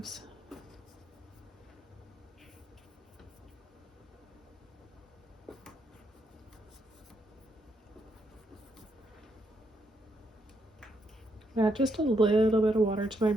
Add just a little bit of water to my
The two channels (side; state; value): both; normal; correlation 0.77